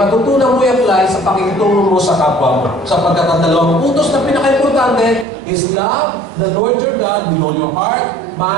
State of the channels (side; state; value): left; drops out; at 5.2 s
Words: mo i-apply sa pakikitungo mo sa kapwa mo. Sapagkat ang dalawang utos na pinaka-importante is love the Lord your God with all your heart,